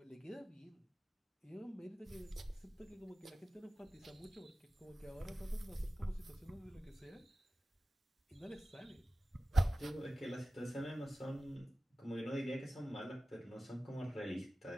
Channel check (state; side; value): normal; both; correlation 0.96